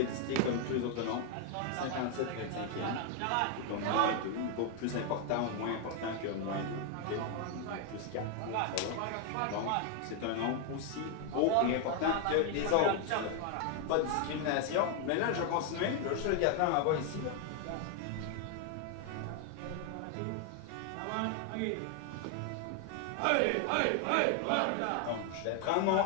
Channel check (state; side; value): different; both; correlation 0.00